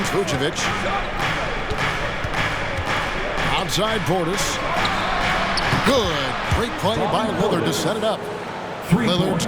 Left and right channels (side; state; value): both; identical; correlation 1.00